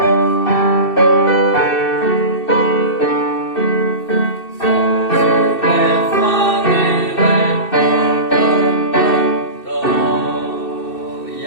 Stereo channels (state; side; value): late; right; 2.6 ms